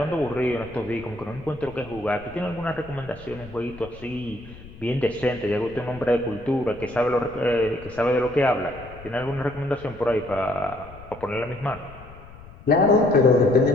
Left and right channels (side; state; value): left; noise; rumble, 18 dB below the sound